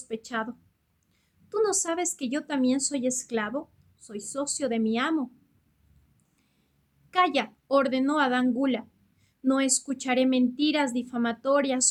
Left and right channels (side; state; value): both; identical; correlation 1.00